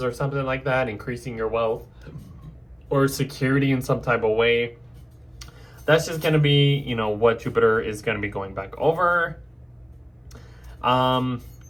or something like that, increasing your wealth or security in some type of way. That's just going to be, what Jupiter is going to be going back over. Then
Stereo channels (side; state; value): both; identical; correlation 1.00